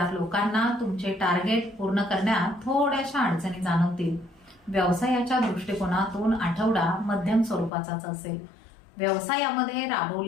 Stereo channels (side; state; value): right; drops out; at 7.7 s